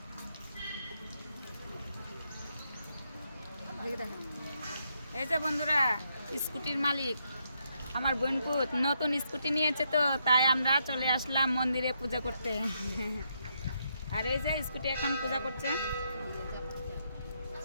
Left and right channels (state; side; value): inverted; both; correlation -0.78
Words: এই যে বন্ধুরা, স্কুটির মালিক আমার বোনপুত নতুন স্কুটি নিয়েছে, তো তাই আমরা চলে আসলাম মন্দিরে পূজা করতে। আর এই যে স্কুটি এখন পূজা করছে।